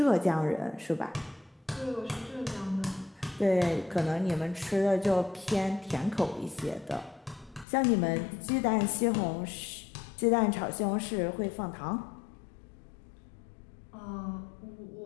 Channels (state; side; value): drops out; right; at 7.7 s